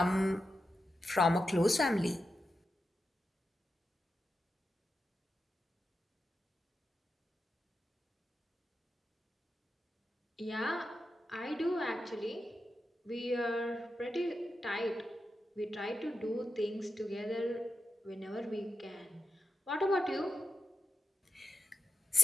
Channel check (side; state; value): both; normal; correlation 0.90